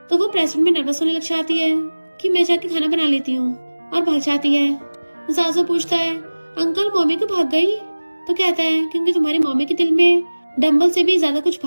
तो वो प्रेजेंट में नर्वस होने लग जाती है कि मैं जाके खाना बना लेती हूँ, और भाग जाती है। जासू पूछता है अंकल मम्मी क्यों भाग गई? तो कहता है क्योंकि तुम्हारी मम्मी के दिल में डंबल से भी ज्यादा कुछ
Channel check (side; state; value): both; inverted; correlation -1.00